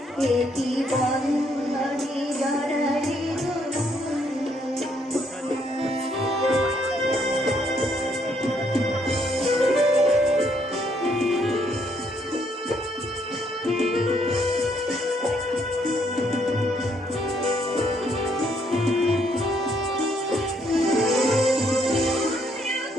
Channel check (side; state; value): both; normal; correlation 0.71